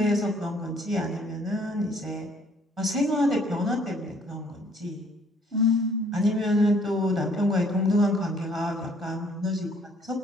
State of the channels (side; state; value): both; normal; correlation 0.61